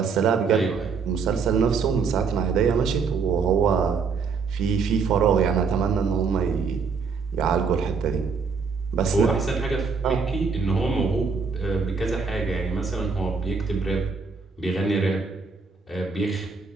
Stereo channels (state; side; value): quieter; left; 5.2 dB